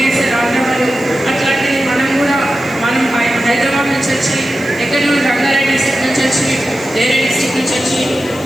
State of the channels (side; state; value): left; noise; hiss, 21 dB below the sound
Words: వేస్తారు ఆంధ్ర వాళ్ళు. అట్లాంటిది మనం హైదరాబాద్ నుంచి వచ్చి ఎక్కడి నుండి రంగారెడ్డి డిస్ట్రిక్ట్ నుంచి వచ్చి వేరే డిస్ట్రిక్ట్ నుంచి వచ్చి